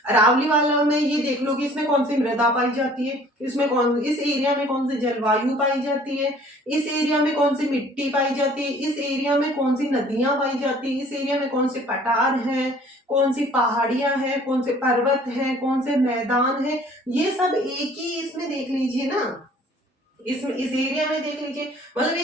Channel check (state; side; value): normal; both; correlation 0.53